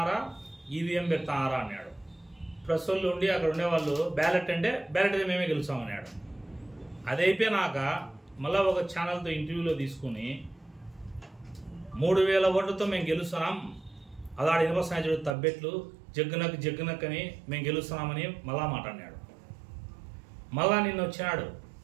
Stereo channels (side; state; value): left; drops out; at 15.4 s